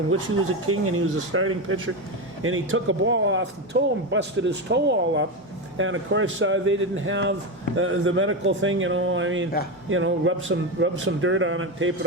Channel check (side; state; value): both; normal; correlation 0.15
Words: which he was a king and he was a starting pitcher, and he took a ball off the toe and busted his toe all up. And of course, they didn't have the medical thing, rub some dirt on it, tape